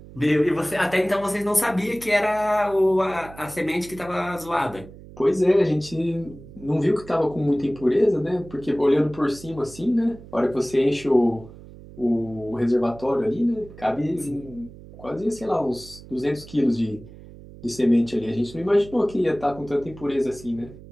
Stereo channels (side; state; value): right; noise; hum, 18 dB below the sound